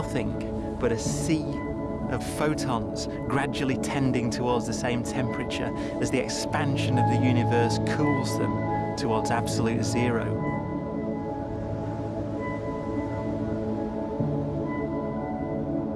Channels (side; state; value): both; identical; correlation 1.00